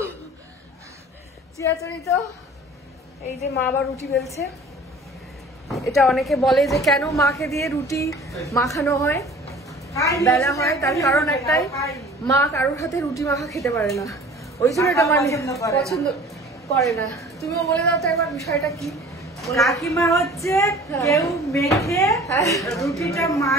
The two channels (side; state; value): both; normal; correlation 0.46